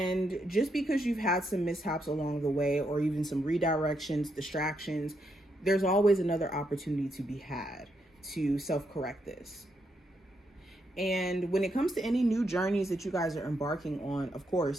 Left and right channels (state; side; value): normal; both; correlation 0.79